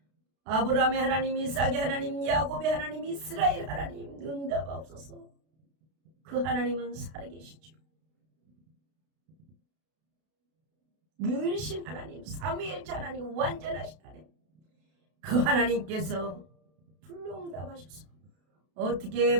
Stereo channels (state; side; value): late; left; 32 ms